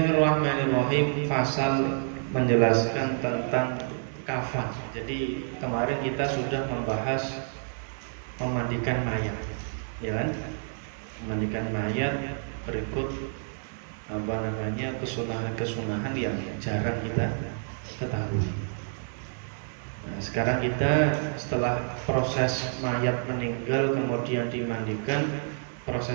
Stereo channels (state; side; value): silent; left; 59 dB below the other